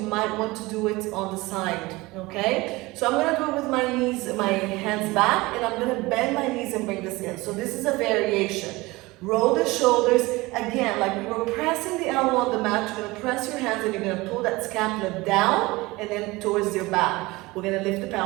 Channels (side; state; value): left; quieter; 21.6 dB